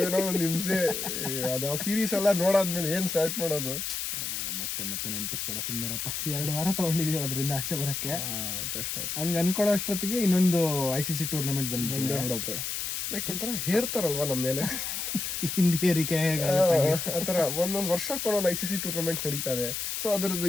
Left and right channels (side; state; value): left; noise; hiss, 3 dB below the sound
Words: ಒಂದು ಹಿಂಸೆ. ಅದು ಆ ಸೀರೀಸ್ ಎಲ್ಲ ನೋಡಾದ್ಮೇಲೆ ಏನ್ ಸ್ಟಾರ್ಟ್ ಮಾಡೋದು? ಮತ್ತೆ ನೆನಪಿಸ್ಬೇಡ, ಸುಮ್ಮನಿರಪ್ಪ. 2 ವಾರ ತಗೊಂಡಿದೀವಿ ಅದರಿಂದ ಆಚೆ ಬರಕ್ಕೆ. ಕಷ್ಟ ಆಯ್ತು. ಹಂಗ ಅನ್ಕೊಳ್ಳೋ ಅಷ್ಟೊತ್ತಿಗೆ ಇನ್ನೊಂದು ICC ಟೂರ್ನಮೆಂಟ್ ಬಂದ್ಬಿಡುತ್ತೆ. ಲೈಕ್ ಒಂಥರ ಹೇರ್ತಾರಲ್ವಾ ನಮ್ಮ ಮೇಲೆ ಹಿಂದಿ ಏರಿಕೆ ಆತರ ಒಂದೊಂದು ವರ್ಷಕ್ಕೆ ಒಂದೊಂದು ICC ಟೂರ್ನಮೆಂಟ್ ನಡೀತಾ ಇದೆ. ಸೊ ಅದರದ್ದು